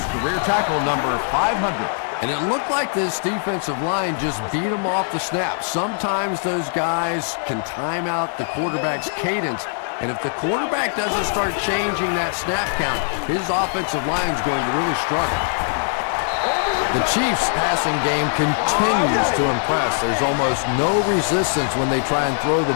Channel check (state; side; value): silent; right; digital silence